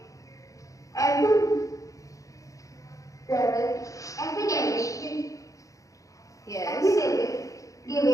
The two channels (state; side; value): late; right; 0.16 ms